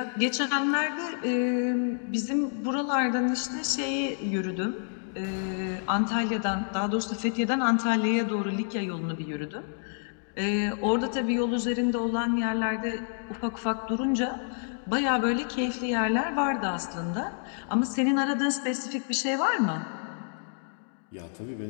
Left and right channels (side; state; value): right; silent; digital silence